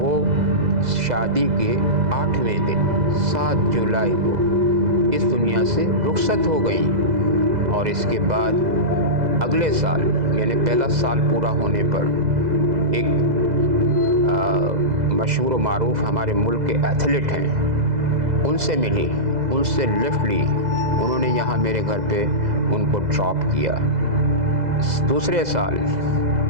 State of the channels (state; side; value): late; left; 2.0 ms